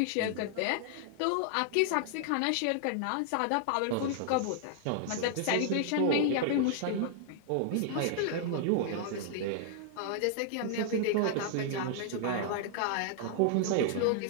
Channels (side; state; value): both; different; correlation 0.00